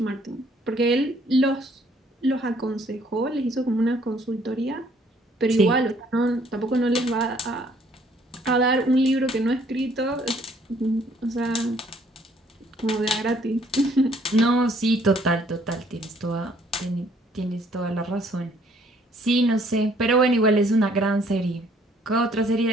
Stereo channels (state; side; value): normal; both; correlation 0.63